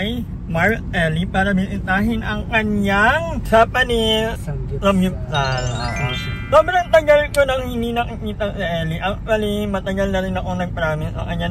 Mark Ellie para bisitahin ang kanyang Japanese samgyupsal. Sobrang tagal ko nang hindi nakikita si Ellie. Actually, matagal na rin ako nag-promise sa kanya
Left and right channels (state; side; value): identical; both; correlation 1.00